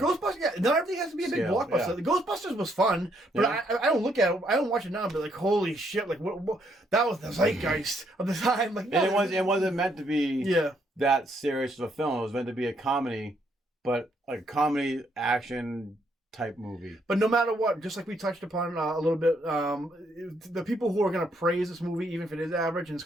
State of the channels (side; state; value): both; normal; correlation 0.72